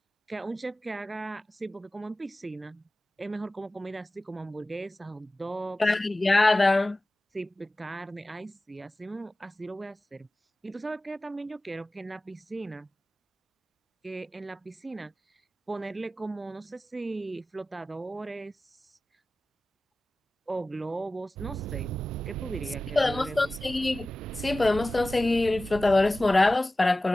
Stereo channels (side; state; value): both; normal; correlation 0.96